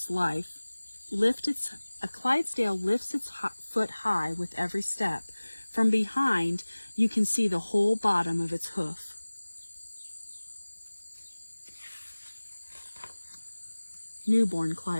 lifts its foot high with every step. From behind, you can see the whole bottom of its hoof. Newborn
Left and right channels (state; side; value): inverted; both; correlation -1.00